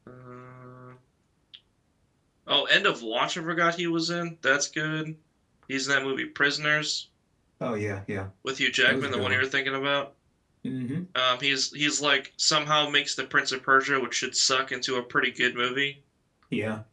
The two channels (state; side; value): identical; both; correlation 1.00